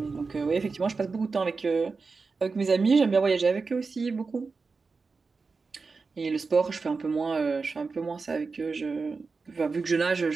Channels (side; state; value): left; quieter; 4.4 dB